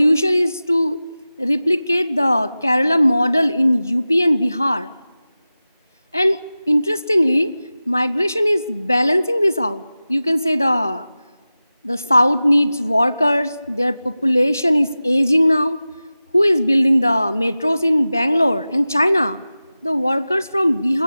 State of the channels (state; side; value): inverted; both; correlation -0.96